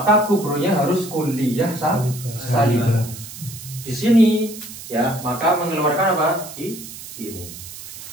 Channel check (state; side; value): noise; right; hiss, 13 dB below the sound